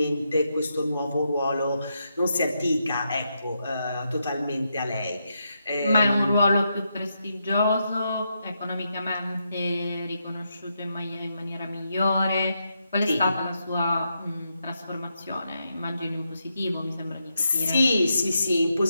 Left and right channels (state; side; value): inverted; both; correlation -0.83